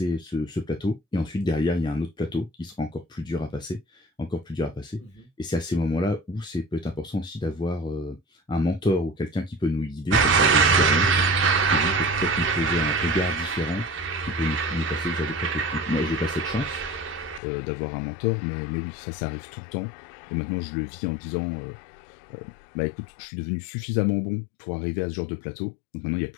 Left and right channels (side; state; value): right; drops out; at 17.4 s